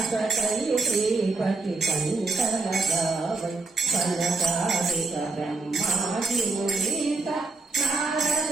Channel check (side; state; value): left; quieter; 3.6 dB